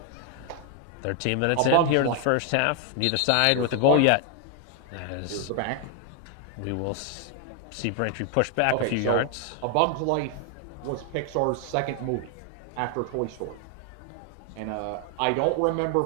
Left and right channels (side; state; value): both; different; correlation 0.00